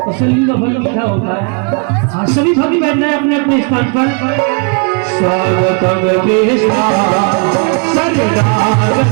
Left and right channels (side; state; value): left; quieter; 35.0 dB